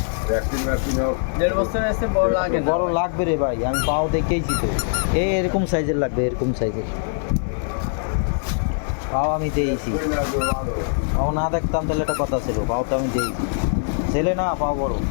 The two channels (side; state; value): right; silent; 56 dB below the other